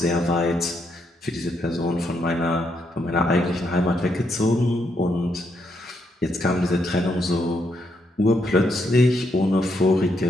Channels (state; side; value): normal; both; correlation 0.77